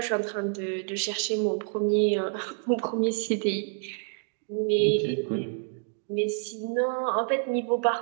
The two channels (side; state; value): left; silent; 59 dB below the other